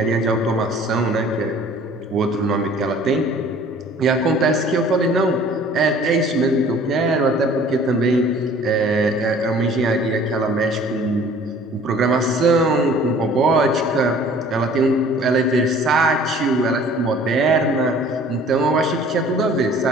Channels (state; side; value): normal; both; correlation 0.51